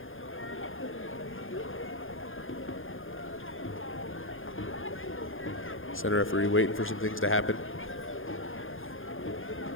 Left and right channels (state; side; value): late; right; 0.59 ms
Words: Center referee waiting for some things to happen,